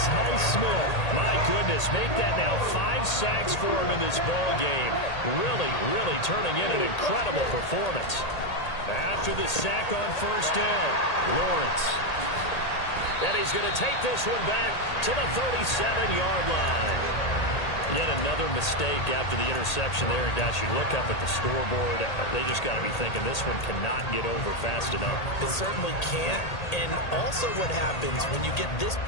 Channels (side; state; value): right; late; 1.8 ms